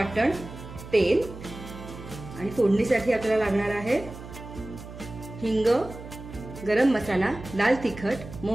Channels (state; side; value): noise; right; hum, 13 dB below the sound